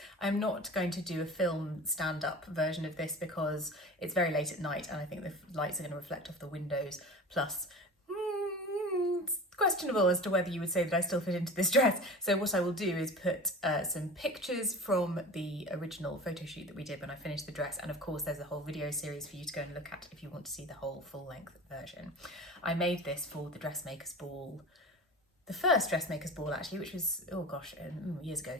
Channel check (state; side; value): normal; both; correlation 0.35